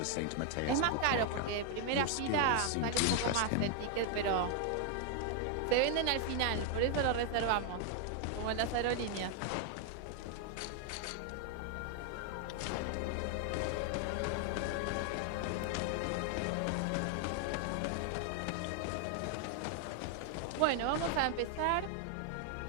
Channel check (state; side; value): different; both; correlation 0.00